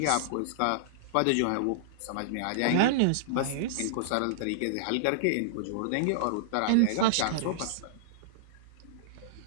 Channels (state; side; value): different; both; correlation -0.02